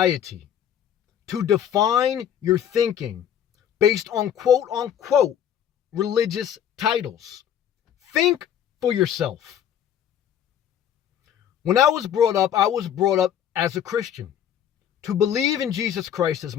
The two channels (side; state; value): right; quieter; 9.6 dB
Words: to define your thinking based on quote unquote religious titles. Think for yourself. When I was brought up as a Christian to believe in Jesus Christ as